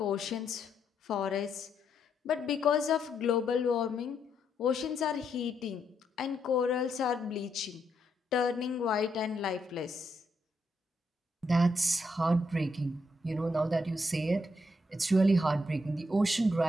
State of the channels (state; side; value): normal; both; correlation 0.77